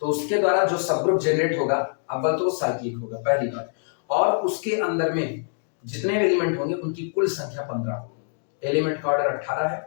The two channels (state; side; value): silent; right; digital silence